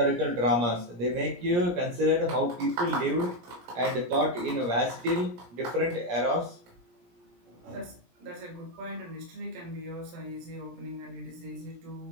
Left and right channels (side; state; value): left; late; 17 ms